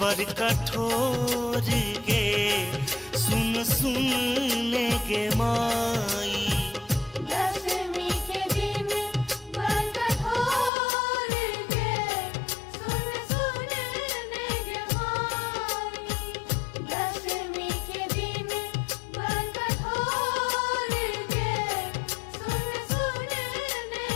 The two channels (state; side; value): drops out; right; at 10.7 s